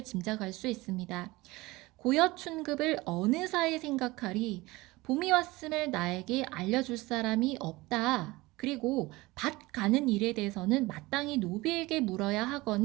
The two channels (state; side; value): quieter; left; 21.0 dB